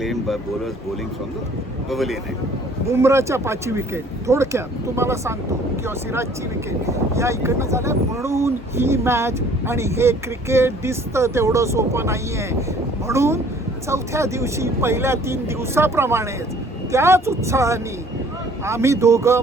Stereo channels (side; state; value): both; normal; correlation 0.55